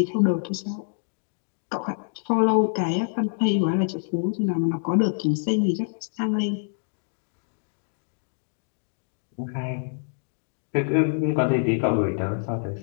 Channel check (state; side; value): silent; right; digital silence